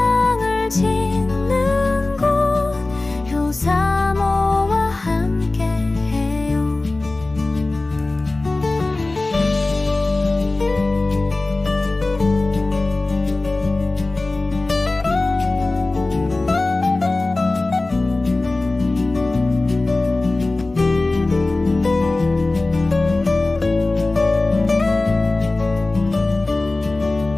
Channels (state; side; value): quieter; right; 3.1 dB